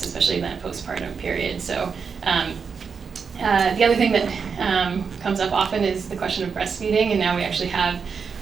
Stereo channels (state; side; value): quieter; left; 5.9 dB